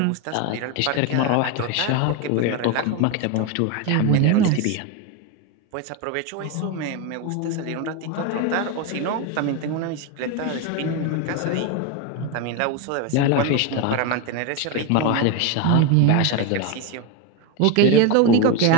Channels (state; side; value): different; both; correlation 0.03